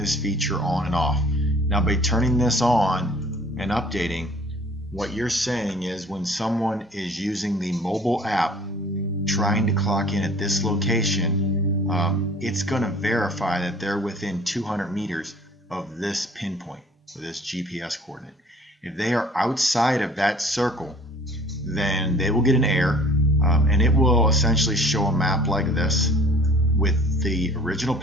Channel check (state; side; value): normal; both; correlation 0.51